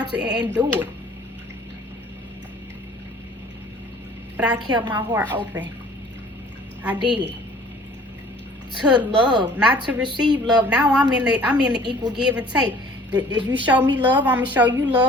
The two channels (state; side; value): normal; both; correlation 0.52